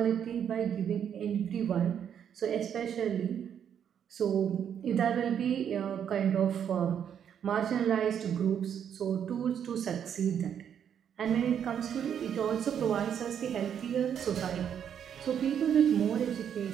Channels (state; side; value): quieter; left; 8.6 dB